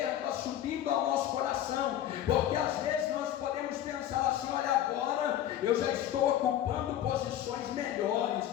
subindo ao nosso coração, porque às vezes nós podemos pensar assim: olha, agora eu já estou ocupando posições melhores,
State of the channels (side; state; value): right; quieter; 11.6 dB